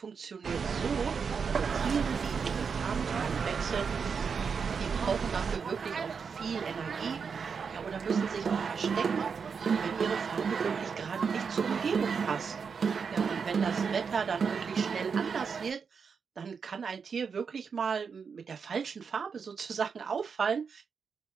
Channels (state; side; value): quieter; left; 5.9 dB